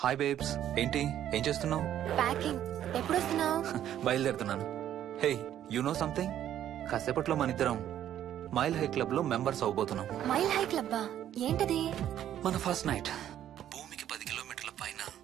హాయ్ బేబ్స్, ఏంటి ఏం చేస్తున్నావు? ప్యాకింగ్. ఎప్పుడు వస్తున్నావు? బయలుదేరుతున్నాను. Hey, you know something? కాసేపట్లో మన ఇద్దరం మైల్ హై క్లబ్ లో మెంబర్స్ అవబోతున్నాం. మైల్ హై క్లబ్బా? ఏంటది? మన ఫస్ట్ నైట్ భూమికి 10 కిలోమీటర్ల పైన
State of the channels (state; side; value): quieter; left; 11.1 dB